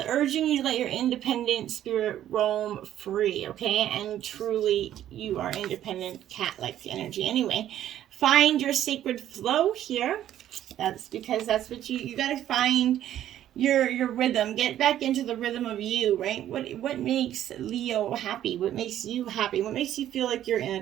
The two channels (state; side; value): quieter; left; 11.8 dB